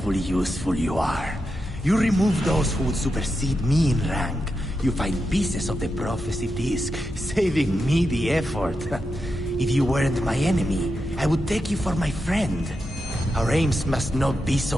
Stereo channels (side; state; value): both; normal; correlation 0.87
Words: useful you are. You remove those who would supersede me in rank. You find pieces of the prophecy disc, saving me the effort. If you weren't my enemy, I would take you for my friend. Our aims must not be